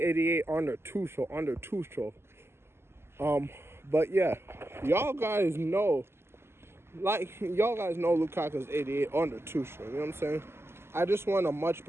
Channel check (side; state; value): left; late; 0.12 ms